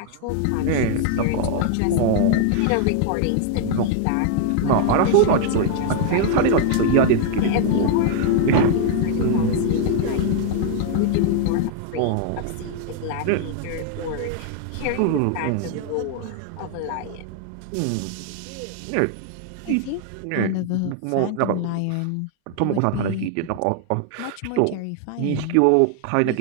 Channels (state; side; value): different; both; correlation 0.00